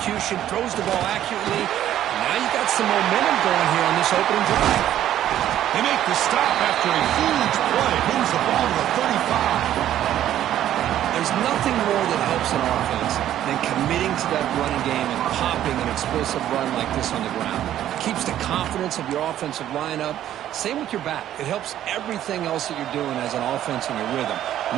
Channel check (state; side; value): quieter; left; 11.8 dB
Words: throws the ball accurately. Now you got some momentum going here on this opening drive. They make the stop after a huge play. Moves the ball to the 35. There's nothing more that helps an offense than committing to that running game and popping an explosive run like this on the ground. It keeps the confidence of your offensive line up. Same with your back. It helps everything else that you're doing as an offense in your rhythm.